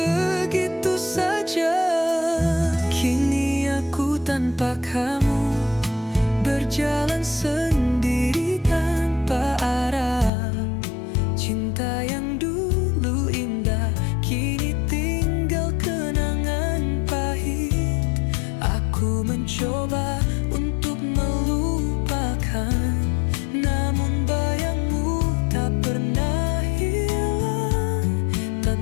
saja. Kini aku tanpa kamu berjalan sendiri tanpa arah. Cinta yang dulu indah kini tinggal kenangan pahit. Aku mencoba untuk melupakan, namun bayangmu tak pernah hilang.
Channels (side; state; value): right; drops out; at 10.3 s